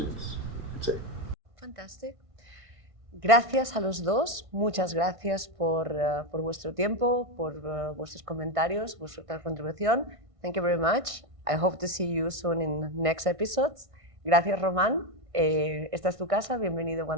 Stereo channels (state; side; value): late; left; 1.6 ms